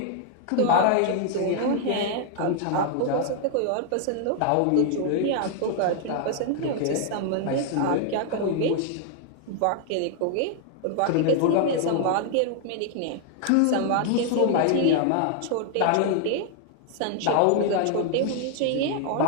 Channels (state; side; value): different; both; correlation 0.00